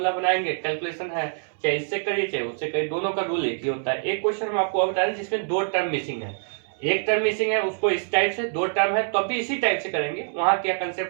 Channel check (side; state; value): left; silent; 62 dB below the other